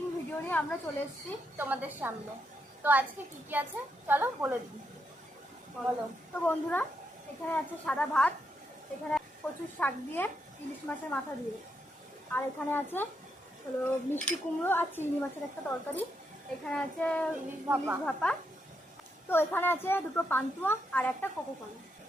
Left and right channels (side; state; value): both; normal; correlation 0.80